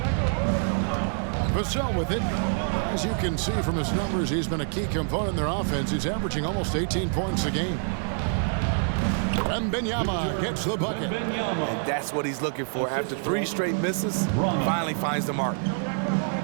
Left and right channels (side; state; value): left; silent; 61 dB below the other